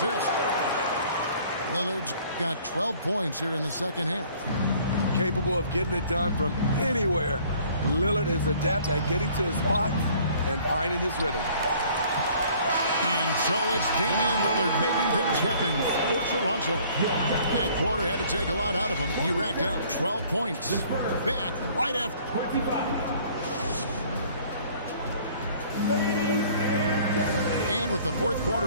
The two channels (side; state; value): both; inverted; correlation -0.55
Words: Lillard's got 12 points here in the second half. Capable of getting it done from anywhere. Lillard is adept at getting to his spots and finding his rhythm. And so it's Damian Lillard making things happen for Toronto. That quarter had to take a lot out of him. He racked up 12 points. Back right after. And with the fourth